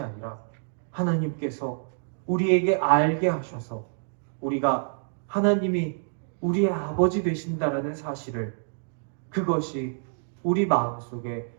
아니라 하나님께서 우리에게 알게 하셔서 우리가 하나님이 우리의 아버지 되신다라는 사실을 그것이 우리 마음속에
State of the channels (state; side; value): silent; left; digital silence